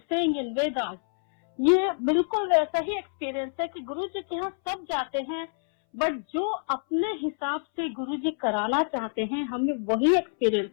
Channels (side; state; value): right; silent; 60 dB below the other